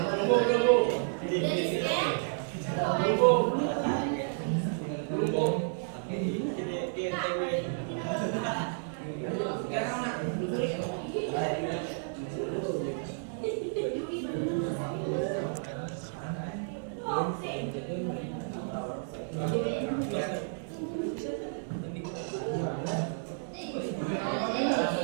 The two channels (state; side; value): silent; left; digital silence